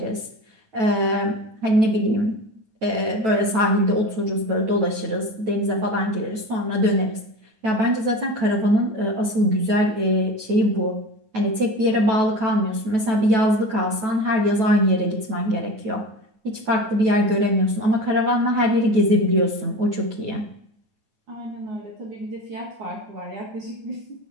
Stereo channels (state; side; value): late; left; 9.2 ms